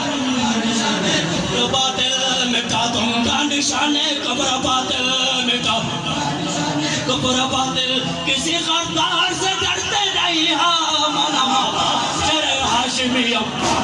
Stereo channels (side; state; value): both; identical; correlation 1.00